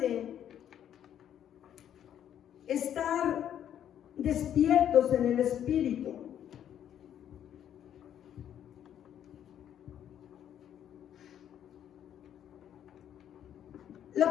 estar despiertos en el Espíritu.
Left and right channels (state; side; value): quieter; right; 10.1 dB